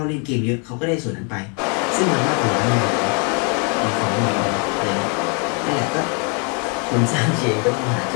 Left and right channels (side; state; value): right; quieter; 36.5 dB